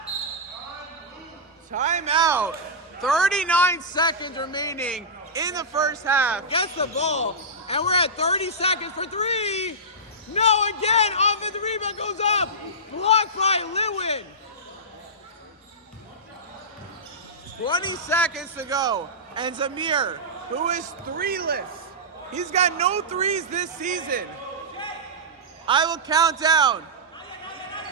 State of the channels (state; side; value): normal; both; correlation -0.14